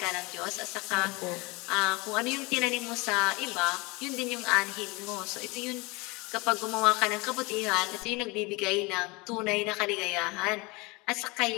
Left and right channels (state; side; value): quieter; right; 25.7 dB